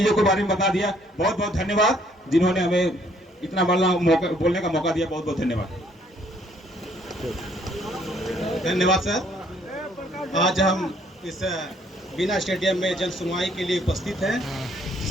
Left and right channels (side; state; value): both; normal; correlation 0.65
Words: के बारे में बता दिया। बहुत बहुत धन्यवाद जिन्होंने हमें इतना बोलने का मौका दिया। बहुत बहुत धन्यवाद। धन्यवाद सर। आज हम इस बीना स्टेडियम में जन सुनवाई के लिए उपस्थित हैं,